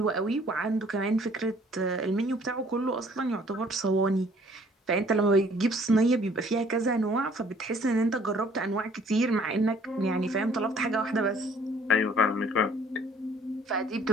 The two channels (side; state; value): both; normal; correlation 0.58